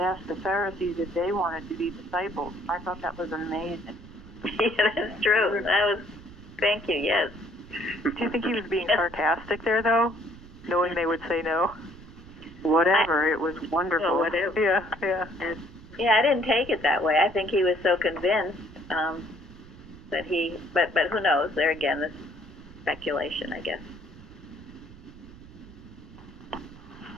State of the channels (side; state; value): right; noise; rumble, 20 dB below the sound